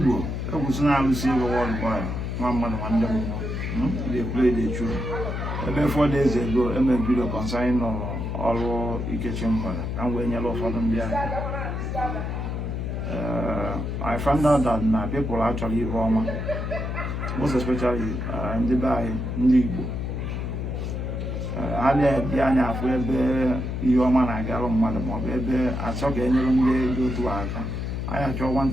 I was now receiving a one boy. 1 month, 1 day. They play the tune. About 4 days ago, I made a video concerning all kitchen mother. And when you for them there. I found out that my people actually Roma, most especially in Dubai, Nibu. I had the Anya for your man, I got on Mother Baby. I saw any go to Aka. I had your one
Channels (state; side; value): noise; left; hum, 3 dB below the sound